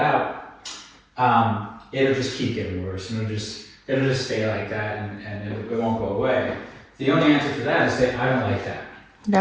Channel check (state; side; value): identical; both; correlation 1.00